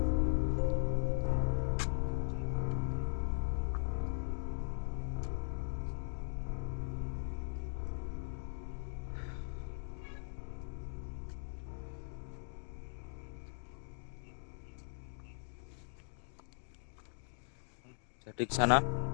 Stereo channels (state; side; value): silent; right; digital silence